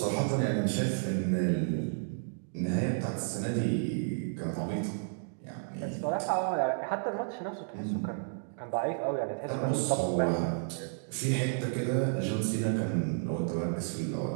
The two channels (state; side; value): silent; left; digital silence